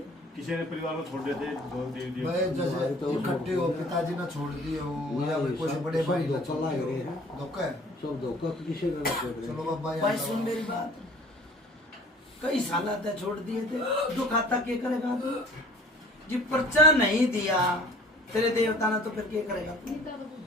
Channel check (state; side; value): normal; both; correlation 0.49